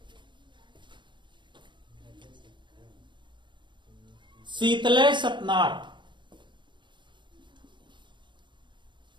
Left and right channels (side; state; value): left; late; 0.23 ms